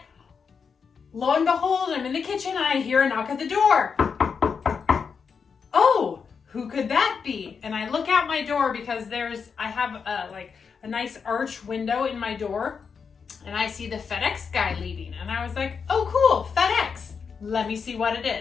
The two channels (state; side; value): quieter; right; 5.9 dB